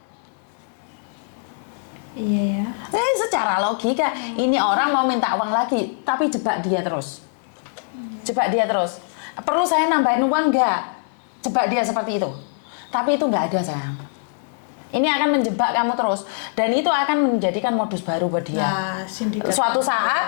Iya ya. Secara logika, ini orang mau minta uang lagi, tapi jebak dia terus. Jebak dia terus. Perlu saya nambahin uang nggak? Jebak dia seperti itu. Tapi itu nggak ada, sayang. Ini akan menjebak kamu terus. Dan itu akan menjadikan modus baru buat dia. Nah, sindikat. Suatu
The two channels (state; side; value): silent; right; 60 dB below the other